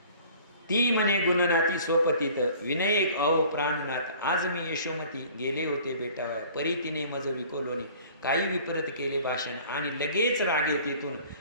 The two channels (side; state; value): both; inverted; correlation -0.49